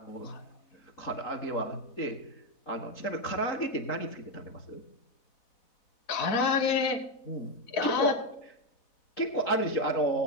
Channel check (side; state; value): right; late; 4.1 ms